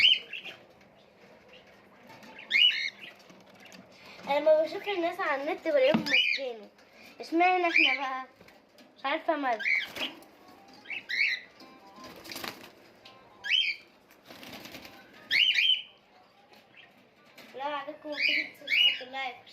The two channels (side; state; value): both; identical; correlation 1.00